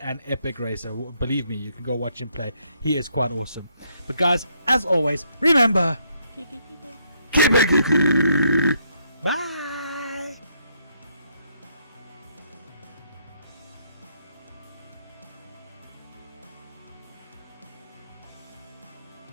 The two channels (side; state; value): both; inverted; correlation -0.73